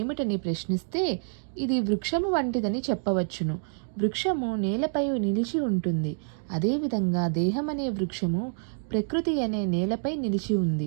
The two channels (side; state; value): left; silent; digital silence